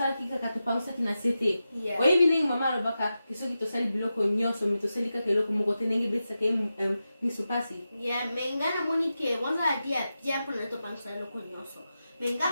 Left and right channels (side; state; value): both; inverted; correlation -0.91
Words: ki kaka to pausa ki na sete. O ebine mama lo baka kisoki to sali biloko nyoso mi to sali ka keloko moko tenenge betsa ke misupasi. Mengana moni ke wanza dia pona to pausa loko nyoso.